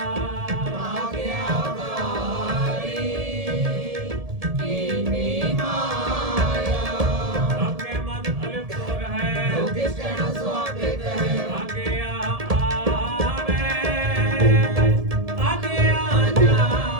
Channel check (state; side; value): late; left; 1.7 ms